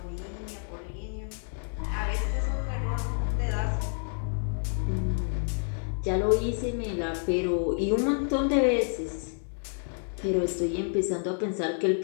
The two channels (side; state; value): right; silent; 59 dB below the other